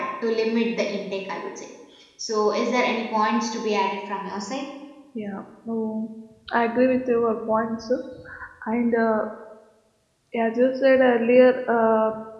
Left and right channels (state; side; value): identical; both; correlation 1.00